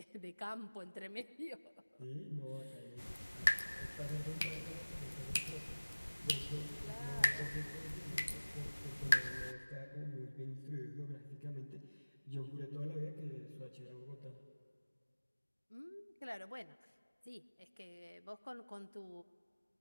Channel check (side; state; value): both; inverted; correlation -1.00